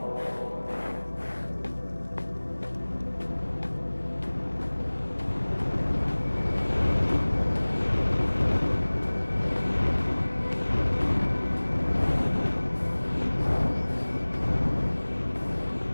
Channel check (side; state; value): both; inverted; correlation -1.00